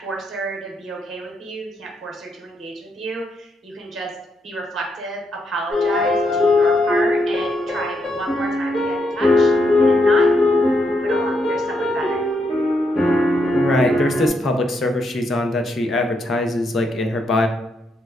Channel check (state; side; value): normal; both; correlation 0.79